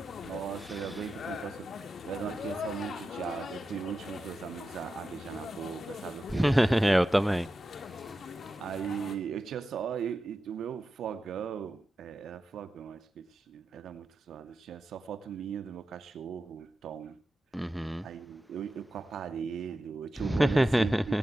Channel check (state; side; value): normal; both; correlation 0.91